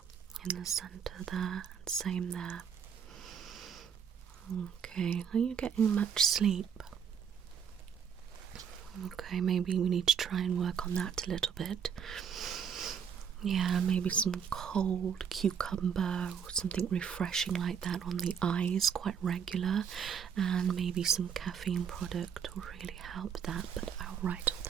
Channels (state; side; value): quieter; left; 7.5 dB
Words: in the centre there, and same there. Okay, are you getting much sleep? Okay, maybe we need to try and work on that a little bit. Yeah, maybe some cold cucumber or something refreshing like that on the eyes, quite regular, and maybe some caffeine product will really help that, but I'll write all